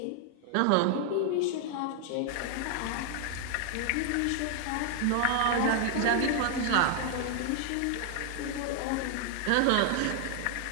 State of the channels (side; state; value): both; different; correlation 0.00